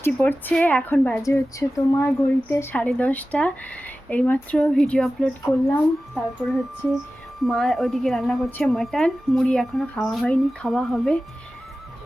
পড়ছে, এখন বাজে হচ্ছে তোমার ঘড়িতে 10:30। এইমাত্র ভিডিও আপলোড করলাম, তারপরে হচ্ছে মা ওইদিকে রান্না করছে মাটন। মুড়ি এখনও খাওয়া হয়নি, খাওয়া হবে।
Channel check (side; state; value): both; normal; correlation 0.95